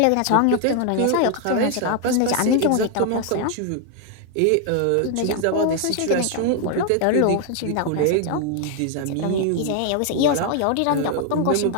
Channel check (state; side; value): different; both; correlation 0.00